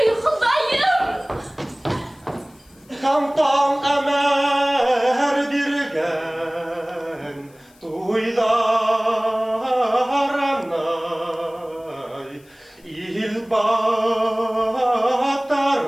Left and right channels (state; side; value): noise; left; hiss, 30 dB below the sound